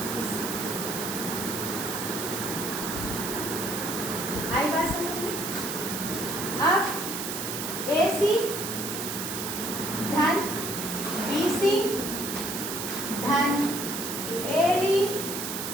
इससे। आई बात समझ में? अब ए सी धन बी सी धन ए डी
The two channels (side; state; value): right; noise; hiss, 4 dB below the sound